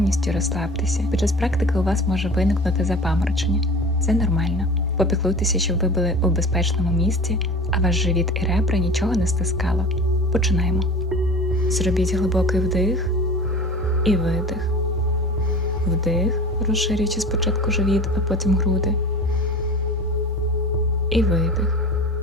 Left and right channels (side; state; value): both; normal; correlation 0.37